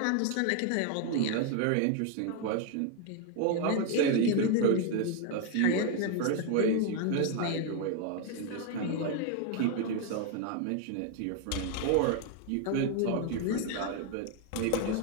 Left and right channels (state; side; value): different; both; correlation 0.00